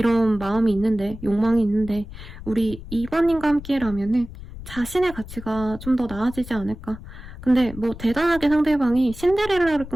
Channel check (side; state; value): left; noise; rumble, 14 dB below the sound